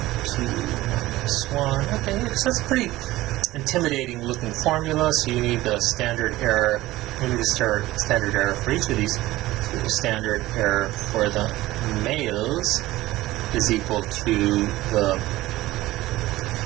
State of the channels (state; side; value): quieter; left; 17.3 dB